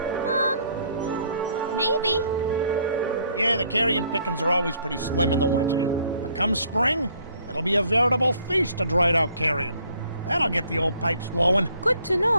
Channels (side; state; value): both; inverted; correlation -0.63